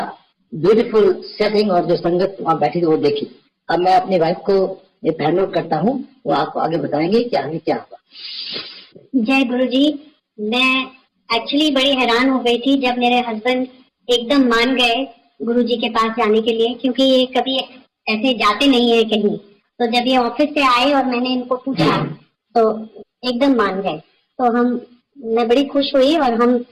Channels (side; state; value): both; identical; correlation 1.00